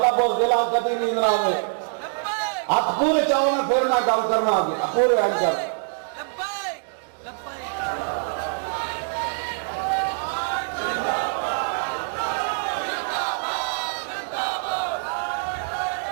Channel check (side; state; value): left; silent; digital silence